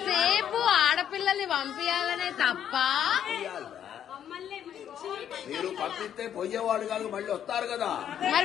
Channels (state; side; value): quieter; right; 9.6 dB